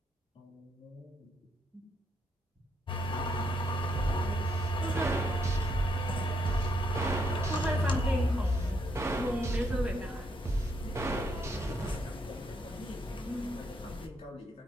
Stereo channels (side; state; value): both; normal; correlation 0.75